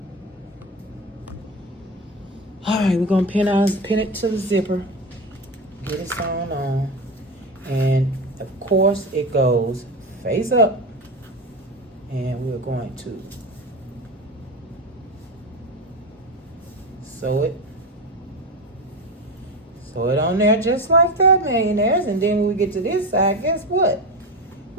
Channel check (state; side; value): normal; both; correlation 0.22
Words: All right, we're gonna pin it to the zipper, get it sewn on, and of course it goes face up, and we're going to sew it on there just like that, millionaires. And then when we get to this side, guess what?